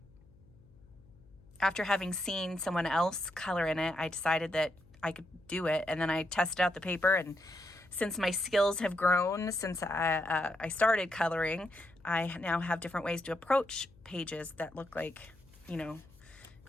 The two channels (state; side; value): noise; left; hum, 26 dB below the sound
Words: after having seen someone else color in it, I decided that I could do it, and then I tested out the paper, and since my skills have grown since I started coloring, I now have different ways to approach pages that look like,